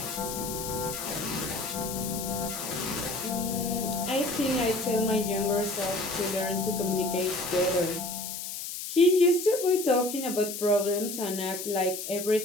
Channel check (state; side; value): noise; left; hiss, 7 dB below the sound